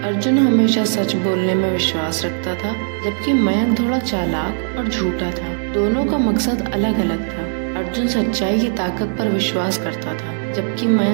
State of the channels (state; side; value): silent; left; 60 dB below the other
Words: अर्जुन हमेशा सच बोलने में विश्वास रखता था, जबकि मयंक थोड़ा चालाक और झूठा था। दोनों का मकसद अलग अलग था। अर्जुन सच्चाई की ताकत पर विश्वास करता था, जबकि